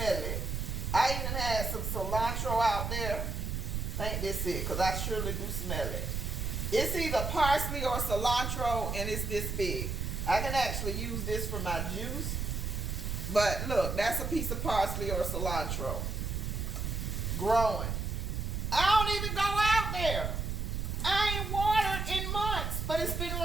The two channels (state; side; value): noise; right; rumble, 2 dB below the sound